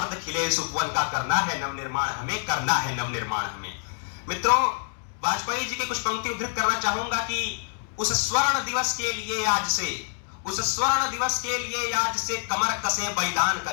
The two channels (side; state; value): right; silent; digital silence